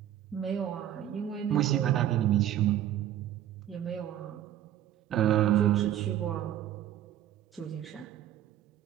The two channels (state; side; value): quieter; left; 11.6 dB